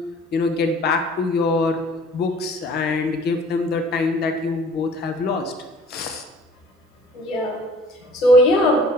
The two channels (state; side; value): normal; both; correlation 0.51